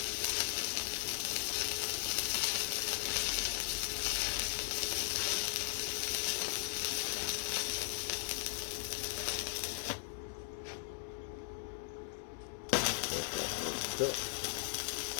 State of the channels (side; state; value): right; silent; 52 dB below the other